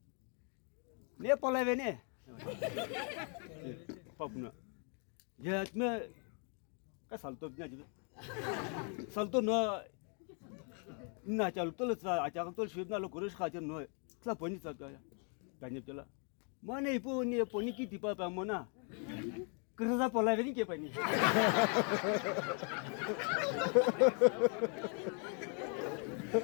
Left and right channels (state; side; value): quieter; right; 39.9 dB